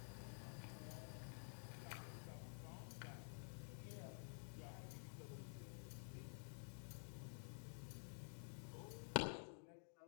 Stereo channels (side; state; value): right; silent; digital silence